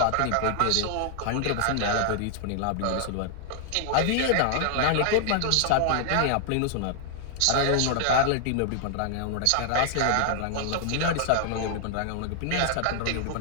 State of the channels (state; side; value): different; both; correlation 0.00